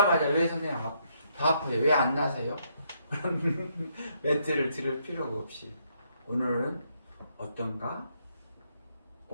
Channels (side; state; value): both; inverted; correlation -0.74